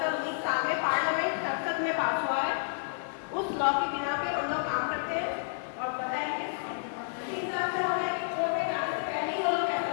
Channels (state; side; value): silent; right; 58 dB below the other